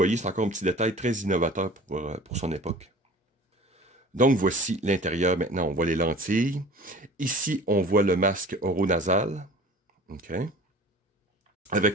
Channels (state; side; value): normal; both; correlation 0.43